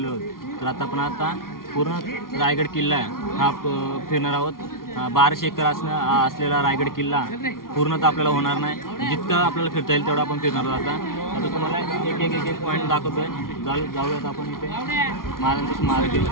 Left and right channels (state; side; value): late; right; 0.92 ms